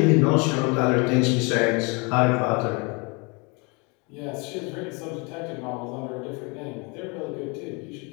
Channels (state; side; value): quieter; right; 30.3 dB